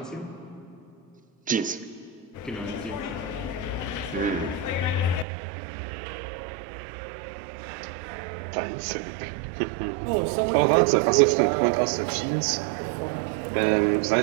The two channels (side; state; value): left; drops out; at 5.2 s